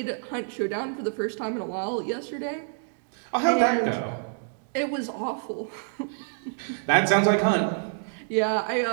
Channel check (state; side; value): silent; left; digital silence